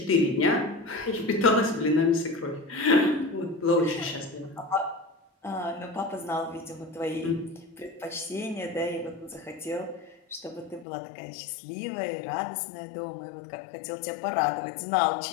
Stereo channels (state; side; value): drops out; right; at 10.9 s